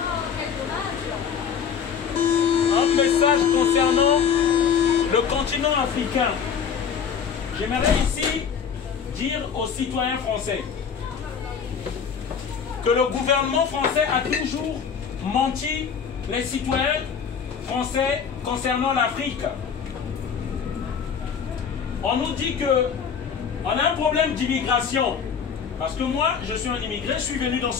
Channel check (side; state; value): right; quieter; 7.0 dB